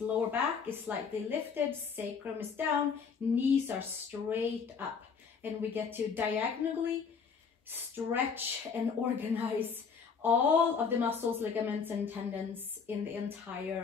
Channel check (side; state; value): right; quieter; 5.8 dB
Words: Lower back is slightly lifted, sacrum is down, knees are straight up, and we get to diagonally stretch and organize all of the muscles, ligaments, and tendons in the